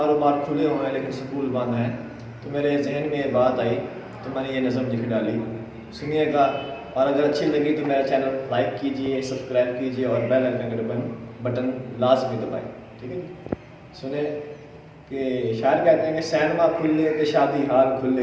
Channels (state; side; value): identical; both; correlation 1.00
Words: खुले हुए हैं लेकिन स्कूल बंद हैं। तो मेरे जहन में ये बात आई तो मैंने ये नज़म लिख डाली। सुनिएगा, और अगर अच्छी लगी तो मेरा चैनल लाइक कीजिए, सब्सक्राइब कीजिए और बेल आइकन का बटन लाजमी दबाएँ। ठीक है, सुने कि शायर कहते हैं कि सैनमा खुले तो शादी हाल खुले,